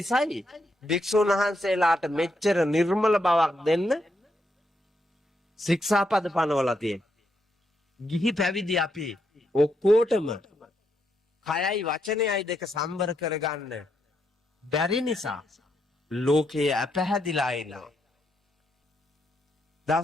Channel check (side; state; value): both; normal; correlation 0.79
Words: භික්ෂුන් වහන්සේලාට මෙච්චර නිර්මල බවක් දෙන්න ශික්ෂාපද පනවලා තියෙන්නේ. ගිහි පැවිදි අපි ඔක්කොටම කයයි වචනයයි දෙක සම්බර කරගන්න බැරි නිසා ලෝකයේ අපැහැදිලා ඉන්නවා.